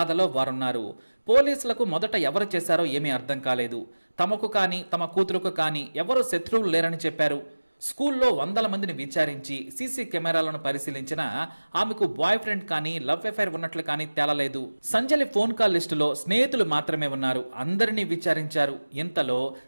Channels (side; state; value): both; inverted; correlation -1.00